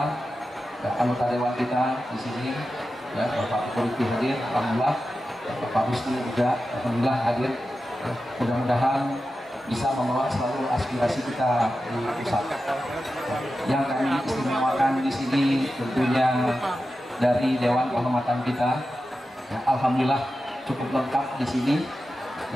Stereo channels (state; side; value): normal; both; correlation 0.92